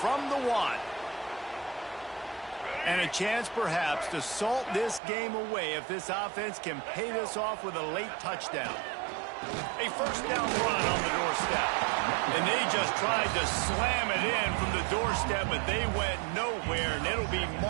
the 1. And a chance perhaps to salt this game away if this offense can pay this off with a late touchdown. A 1st down run on the doorstep. And they just tried to slam it in from the doorstep, but they went nowhere, and it'll be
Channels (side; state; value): left; drops out; at 5.0 s